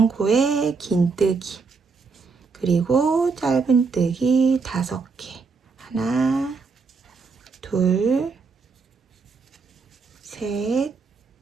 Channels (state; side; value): quieter; left; 4.8 dB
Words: 코에 긴뜨기 그리고 짧은뜨기 5개 하나, 둘, 셋,